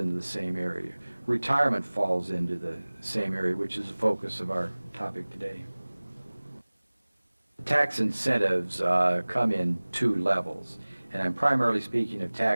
the same area. Retirement falls into the same area, which is the focus of our topic today. Tax incentives come in two levels, and I'm primarily speaking of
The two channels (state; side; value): inverted; both; correlation -1.00